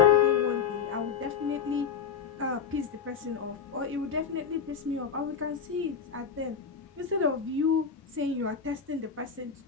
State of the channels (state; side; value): quieter; right; 6.7 dB